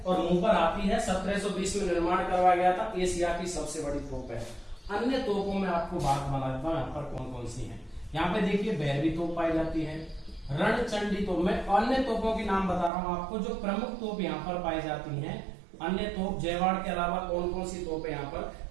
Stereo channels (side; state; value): left; drops out; at 12.9 s